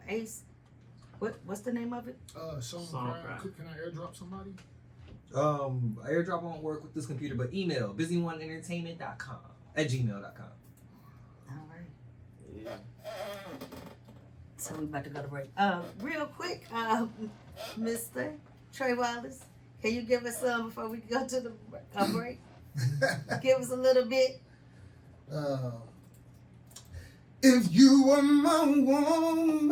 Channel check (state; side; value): identical; both; correlation 1.00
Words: Ace, What's the name of it? Songcraft. Can I airdrop somebody? Airdrop won't work with this computer, but email busyoneeentertainment.com@gmail.com. All right. Yeah. So we about to go to break. Real quick, Mr. Trey Wallace, can you give us some before we go to the break? Give us a little bit. If you were my